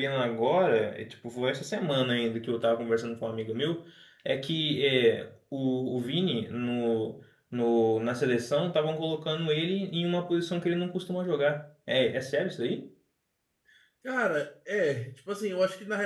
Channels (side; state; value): both; identical; correlation 1.00